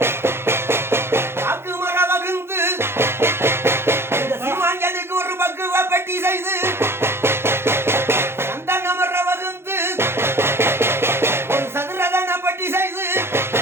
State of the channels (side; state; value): left; late; 0.12 ms